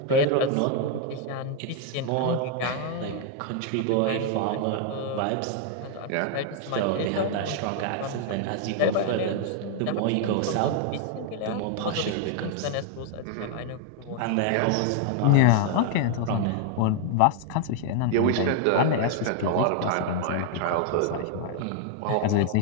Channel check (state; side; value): different; both; correlation 0.00